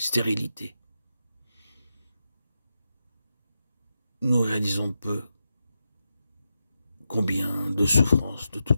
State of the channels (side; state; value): both; inverted; correlation -0.88